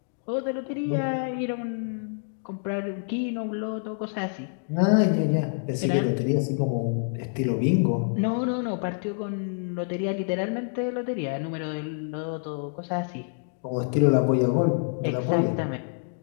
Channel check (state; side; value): silent; right; digital silence